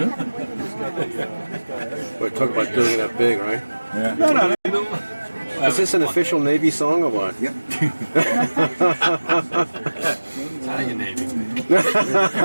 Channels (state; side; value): inverted; both; correlation -1.00